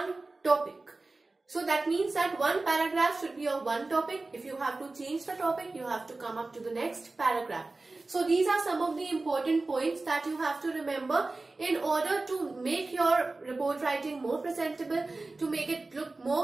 topic. So that means that one paragraph should be of one topic. If you have to change the topic, you have to come up to the next paragraph. So these are some of the important points that you have to remember in order to make your report writing more presentable, to make it look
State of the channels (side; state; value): left; quieter; 3.3 dB